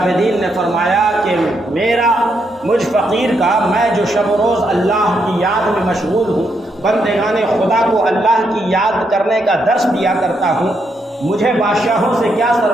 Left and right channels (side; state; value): both; normal; correlation 0.78